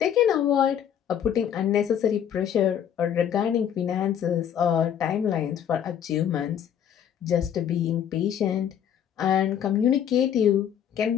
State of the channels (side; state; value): right; quieter; 9.2 dB